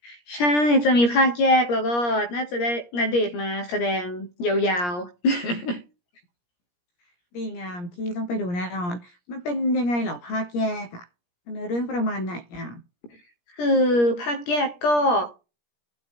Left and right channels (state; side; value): late; right; 17 ms